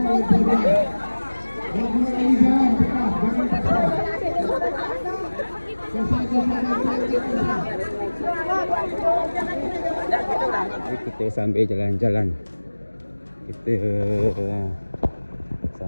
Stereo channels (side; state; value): both; inverted; correlation -1.00